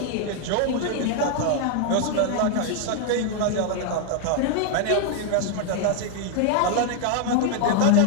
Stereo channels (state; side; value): different; both; correlation 0.00